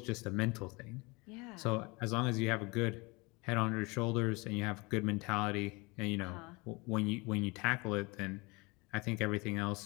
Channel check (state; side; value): quieter; right; 26.4 dB